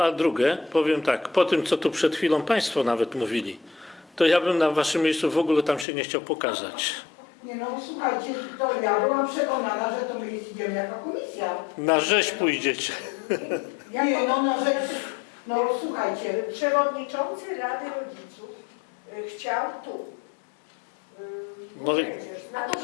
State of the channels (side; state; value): right; drops out; at 5.9 s